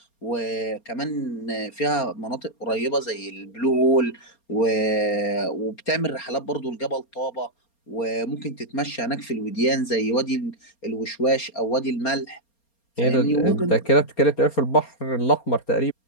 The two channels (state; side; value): late; right; 4.3 ms